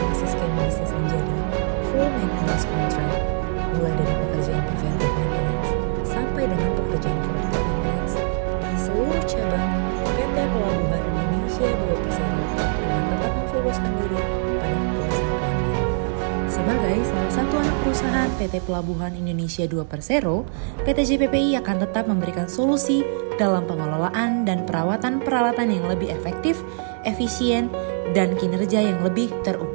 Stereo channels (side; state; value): left; silent; 60 dB below the other